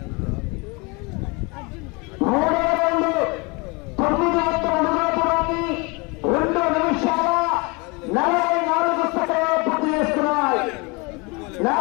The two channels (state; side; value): quieter; right; 28.5 dB